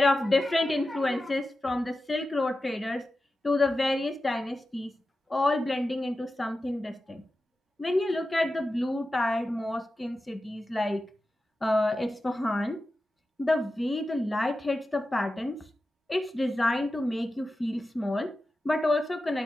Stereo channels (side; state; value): both; normal; correlation 0.93